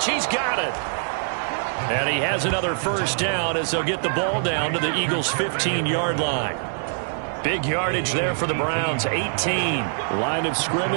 He's got it. And he has another first down as they'll get the ball down to the Eagles' 15-yard line. Big yardage there for the Browns, 18. Line of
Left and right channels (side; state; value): left; silent; digital silence